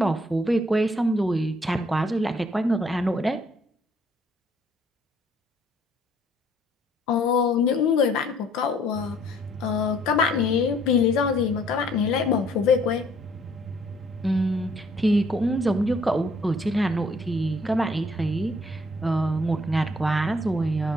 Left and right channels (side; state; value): both; normal; correlation 0.62